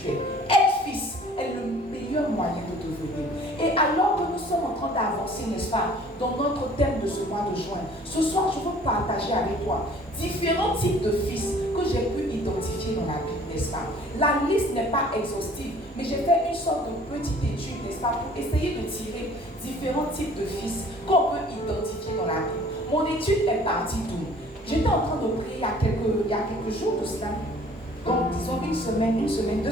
Être fils est le meilleur moyen de devenir. Et alors que nous sommes en train d'avancer, n'est-ce pas, dans notre thème de ce mois de juin, ce soir, je veux partager avec toi différents types de fils que j'ai pu identifier dans la Bible, n'est-ce pas? La liste n'est pas exhaustive, mais j'ai fait une sorte de petite étude, n'est-ce pas, pour essayer de tirer différents types de fils qu'on peut identifier dans la Bible. Mon étude est partie d'où? J'étais en train de prier il y a quelques jours de cela, donc disons une semaine, 2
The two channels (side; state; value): both; normal; correlation 0.52